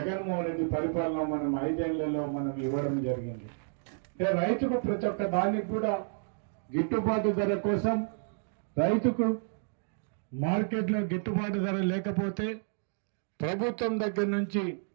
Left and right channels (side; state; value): left; silent; digital silence